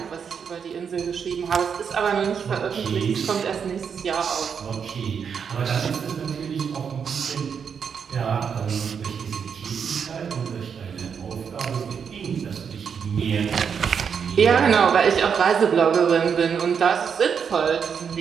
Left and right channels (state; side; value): quieter; left; 6.9 dB